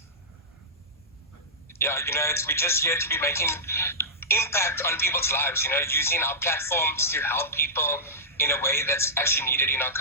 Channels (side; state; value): both; normal; correlation -0.14